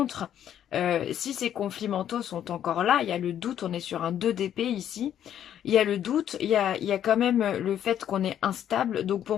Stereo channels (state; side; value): quieter; right; 10.3 dB